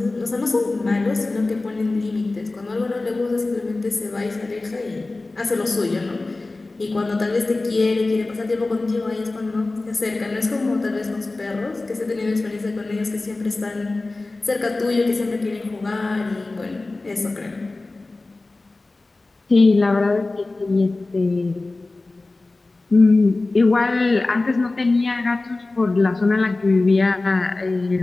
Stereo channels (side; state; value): right; quieter; 3.2 dB